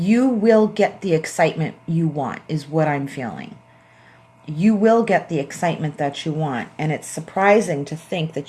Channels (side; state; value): both; identical; correlation 1.00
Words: will get the excitement you want, is what I'm feeling. You will get the excitement that you want. And it's surprising to think